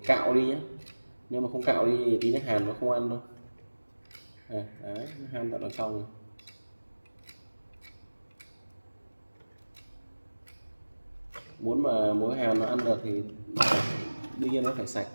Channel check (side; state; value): both; inverted; correlation -1.00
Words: cạo đi nhé, nếu mà không cạo đi thì tí nó hàn nó không ăn đâu. Đấy, nó han tận ở trong rồi. Muốn mà muối hàn nó ăn được thì đương nhiên nó phải sạch,